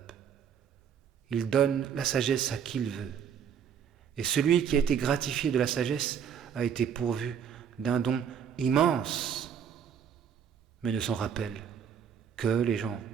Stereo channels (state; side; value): quieter; left; 7.9 dB